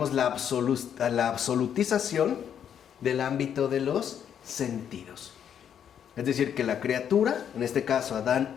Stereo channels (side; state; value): right; quieter; 8.8 dB